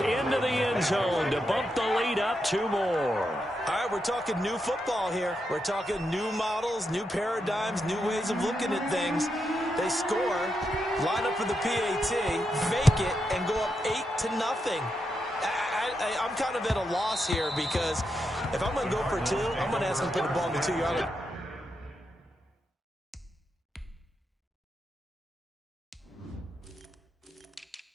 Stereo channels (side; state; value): both; normal; correlation 0.84